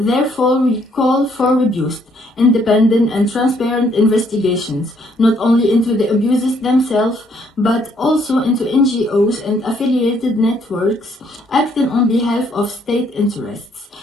we call for robust, independent, and transparent investigations, not only into the abuses themselves, but also into NGOs and affiliated networks acting on behalf of state interests.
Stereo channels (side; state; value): both; normal; correlation 0.68